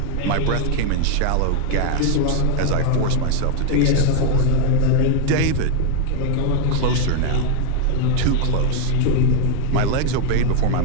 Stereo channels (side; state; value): both; different; correlation 0.01